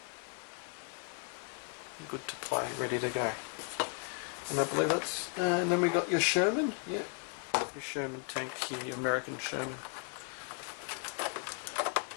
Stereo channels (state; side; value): quieter; right; 37.5 dB